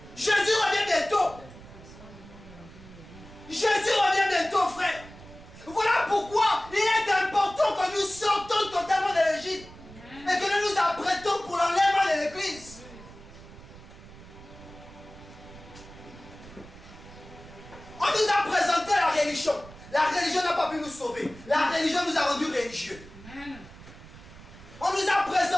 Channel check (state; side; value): noise; right; rumble, 18 dB below the sound